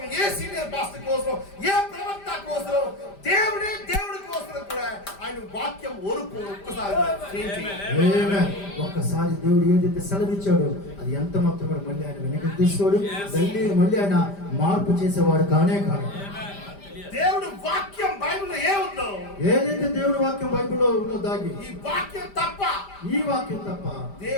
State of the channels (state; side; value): late; right; 5.1 ms